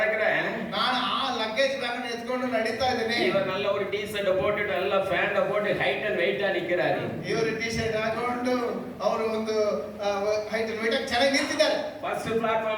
ನಾನು ಆ ಲಗೇಜ್ ಬ್ಯಾಗ್ ಎತ್ಕೊಂಡು ನಡೀತಾ ಇದ್ದೇನೆ. இவர் நல்ல ஒரு டி-ஷர்ட் போட்டுட்டு நல்ல ಪ್ಯಾಂಟ್ போட்டு ಹೈಟ್ ಅಂಡ್ ವೆಯ್ಟ್ ನಿಂತಿದ್ದಾರೆ. ಇವರು ಟಿ-ಶರ್ಟ್ ಹಾಕೊಂಡು ಅವರು ಒಂದು ಹೈಟ್ ಅಂಡ್ ವೆಯ್ಟ್ ಚೆನ್ನಾಗಿ ನಿಂತಿದ್ದಾರೆ. ಫಸ್ಟ್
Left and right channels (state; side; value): identical; both; correlation 1.00